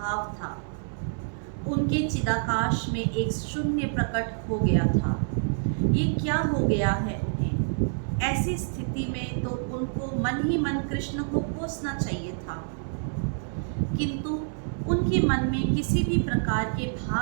था। उनके चिदाकाश में एक शून्य प्रकट हो गया था। ये क्या हो गया है उन्हें? ऐसी स्थिति में तो उनको मन ही मन कृष्ण को कोसना चाहिए था, किंतु उनके मन में किसी भी प्रकार के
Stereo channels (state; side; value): silent; left; digital silence